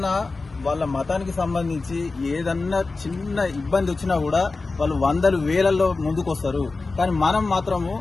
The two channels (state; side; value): quieter; right; 3.7 dB